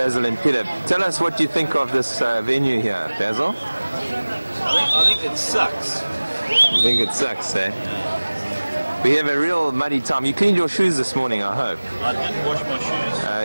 and Peter. Tell us what you think of this venue here, Basil. I think it sucks. You think it sucks, eh? We have a real muddy time. You cleaned your shoes this morning, I hope. I didn't wash my shoes.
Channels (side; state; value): both; inverted; correlation -1.00